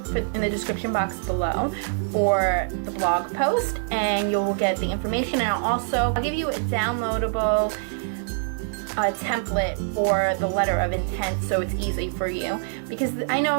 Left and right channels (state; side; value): silent; left; digital silence